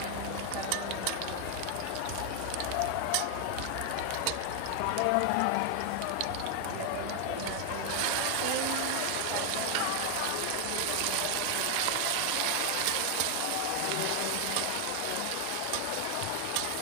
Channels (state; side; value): different; both; correlation 0.01